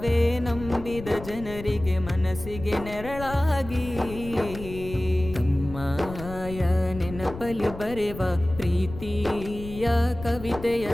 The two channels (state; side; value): noise; left; rumble, 12 dB below the sound